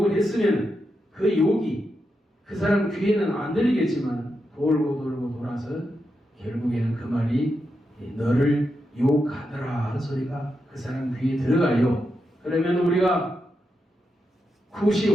했으면 그 욕이 그 사람 귀에는 안 들리겠지만 돌고 돌고 돌아서 결국에는 그 말이 너를 욕하더라 하는 소리가 그 사람 귀에 들어가요. 그러면 우리가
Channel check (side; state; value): both; normal; correlation 0.86